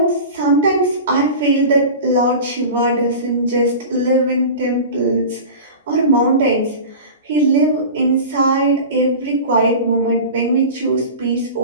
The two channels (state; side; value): inverted; both; correlation -0.33